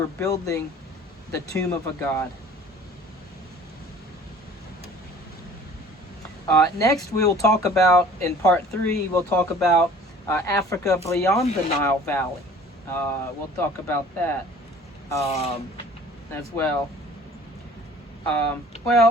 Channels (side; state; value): both; normal; correlation 0.49